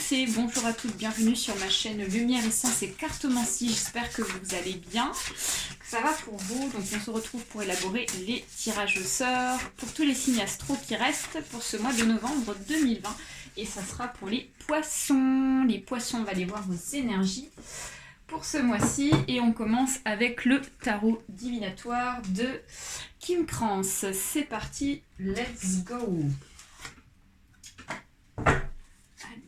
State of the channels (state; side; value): identical; both; correlation 1.00